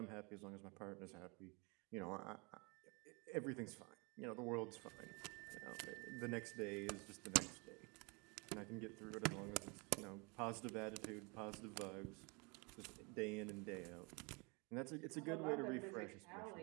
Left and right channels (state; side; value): quieter; left; 30.4 dB